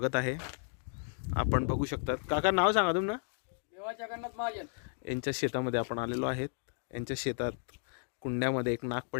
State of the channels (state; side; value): silent; right; digital silence